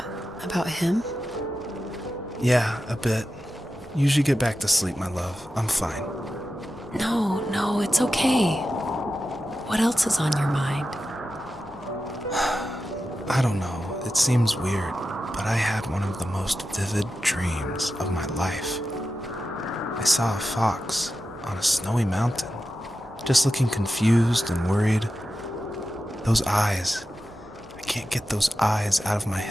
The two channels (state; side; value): normal; both; correlation 0.91